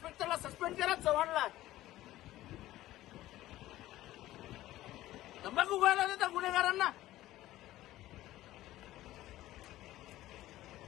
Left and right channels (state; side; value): quieter; right; 15.4 dB